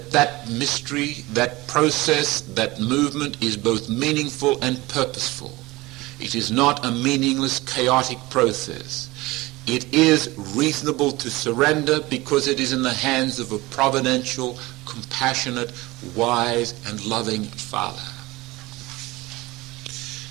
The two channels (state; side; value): quieter; left; 20.8 dB